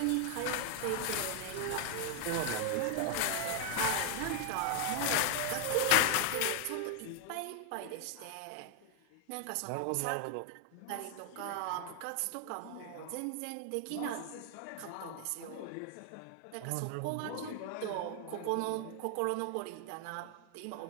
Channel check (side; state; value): both; different; correlation 0.00